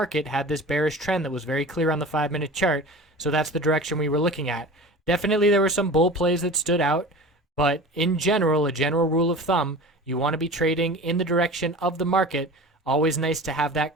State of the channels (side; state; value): both; normal; correlation 0.36